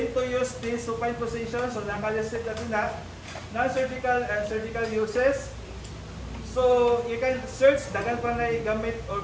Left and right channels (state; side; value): identical; both; correlation 1.00